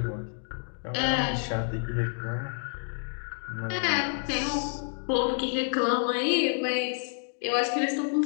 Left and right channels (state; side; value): silent; right; digital silence